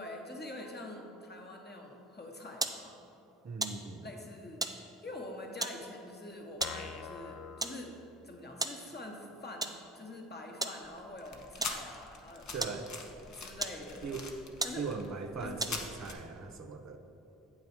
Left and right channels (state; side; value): normal; both; correlation 0.34